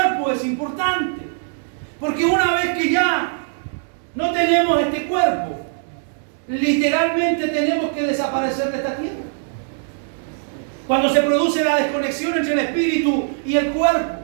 es importante. Porque una vez que ya no tenemos este cuerpo, literalmente tenemos que desaparecer de esta tierra. Cuando se produce la desconexión entre el espíritu y el cuerpo,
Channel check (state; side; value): silent; left; 65 dB below the other